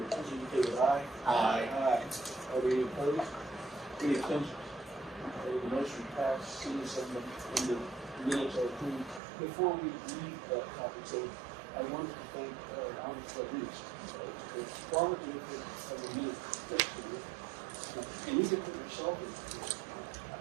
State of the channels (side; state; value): left; drops out; at 9.2 s